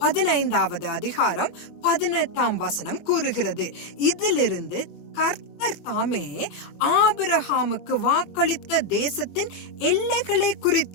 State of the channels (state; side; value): late; right; 23 ms